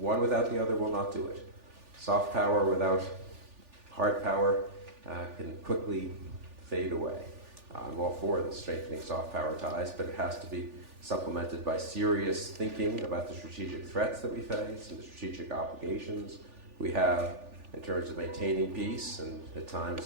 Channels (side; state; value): left; late; 3.4 ms